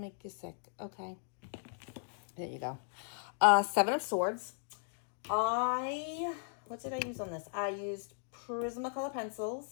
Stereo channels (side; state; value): right; silent; digital silence